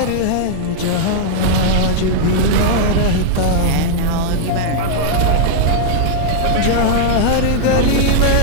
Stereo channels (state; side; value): different; both; correlation -0.01